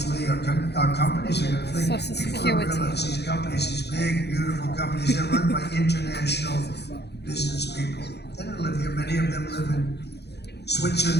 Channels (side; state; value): right; late; 0.48 ms